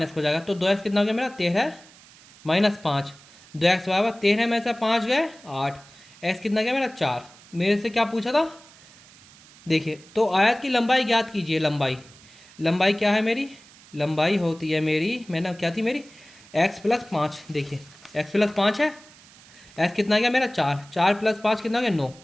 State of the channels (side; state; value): right; noise; hiss, 24 dB below the sound